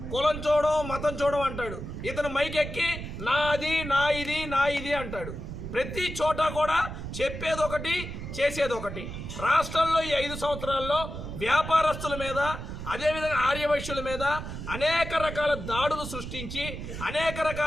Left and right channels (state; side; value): noise; right; rumble, 8 dB below the sound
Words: కులం చూడం, మతం చూడం అంటాడు. ఇతను మైకెక్కి నాది, నా ఇది అంటాడు. ప్రతి చోట కూడా చెప్పేది ఒకటి, చేసేది ఒకటి. రాష్ట్రంలో ఈ 5 సంవత్సరాల్లో వ్యాపారస్తుల మీద, అదేవిధంగా ఆర్యవైశ్యుల మీద అనేక రకాల దాడులు సృష్టించి, అనేక